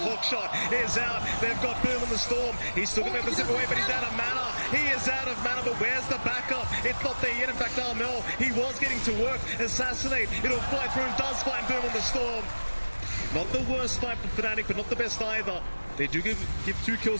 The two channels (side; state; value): both; inverted; correlation -1.00